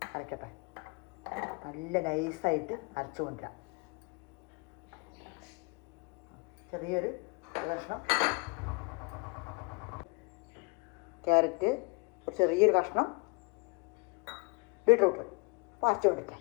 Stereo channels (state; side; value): quieter; right; 30.5 dB